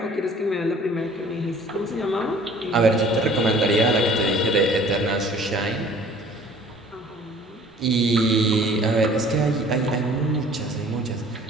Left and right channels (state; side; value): normal; both; correlation 0.51